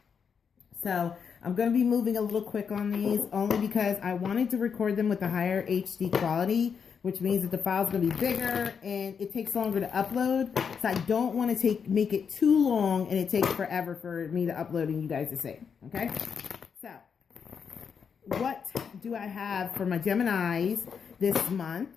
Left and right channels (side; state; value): right; quieter; 6.6 dB